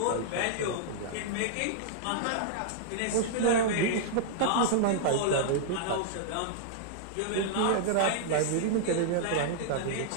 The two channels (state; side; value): different; both; correlation -0.01